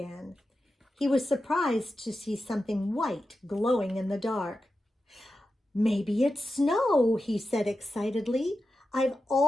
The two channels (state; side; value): normal; both; correlation 0.91